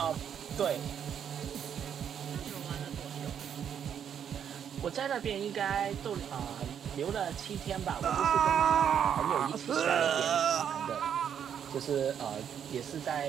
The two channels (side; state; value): left; quieter; 8.5 dB